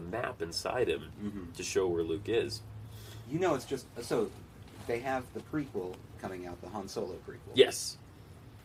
map inside him to show where Luke is. You know, it's just so they have the prequel coming out, the Han Solo prequel. Yes.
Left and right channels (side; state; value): both; identical; correlation 1.00